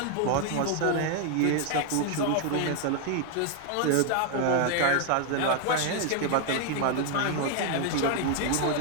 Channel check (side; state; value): both; different; correlation 0.00